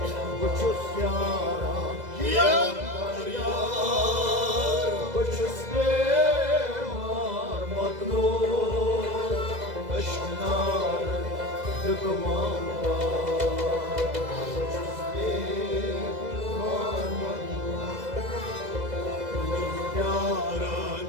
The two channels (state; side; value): late; left; 2.0 ms